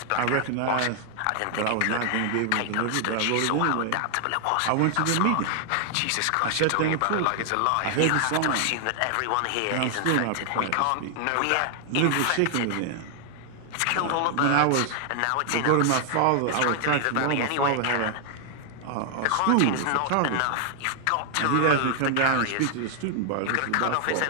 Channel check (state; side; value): different; both; correlation 0.00